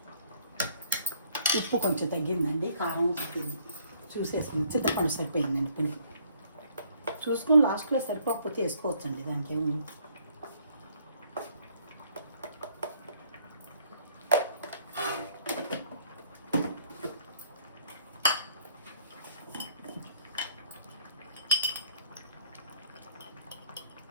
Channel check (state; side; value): inverted; both; correlation -0.63